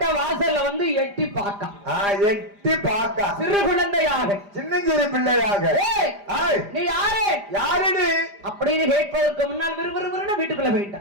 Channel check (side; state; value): left; late; 5.0 ms